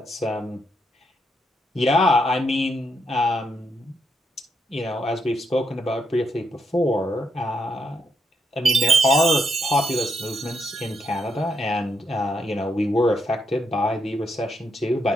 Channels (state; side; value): normal; both; correlation 0.79